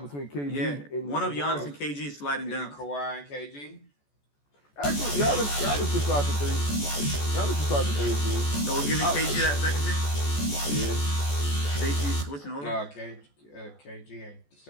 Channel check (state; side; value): late; right; 14 ms